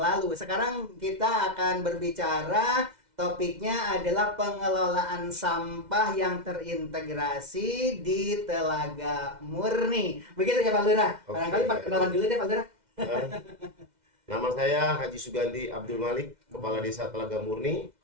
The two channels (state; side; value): late; left; 2.0 ms